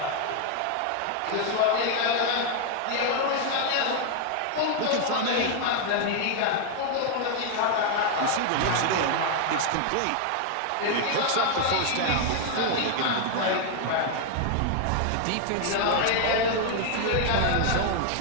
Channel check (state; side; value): different; both; correlation 0.00